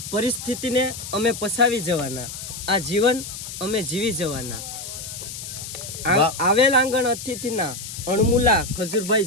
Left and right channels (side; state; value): left; noise; hiss, 9 dB below the sound